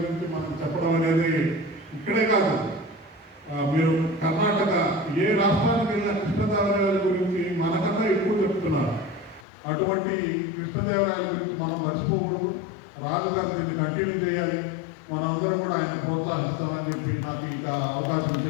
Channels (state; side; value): drops out; right; at 9.5 s